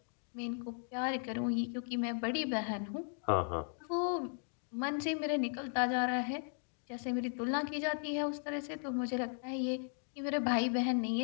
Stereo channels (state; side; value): silent; right; 53 dB below the other